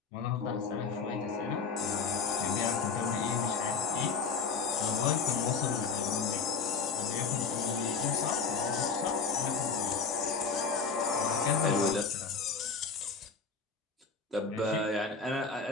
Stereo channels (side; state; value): right; quieter; 5.0 dB